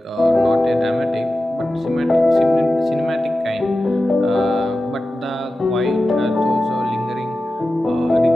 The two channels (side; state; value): both; normal; correlation 0.93